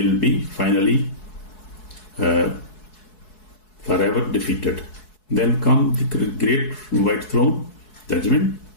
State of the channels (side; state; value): right; late; 4.7 ms